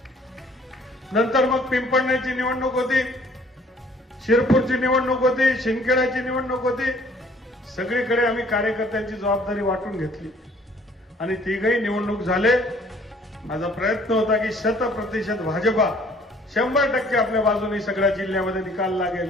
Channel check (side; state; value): both; normal; correlation 0.57